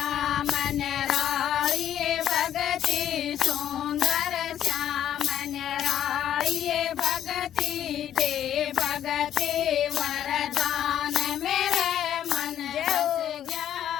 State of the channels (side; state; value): right; quieter; 10.7 dB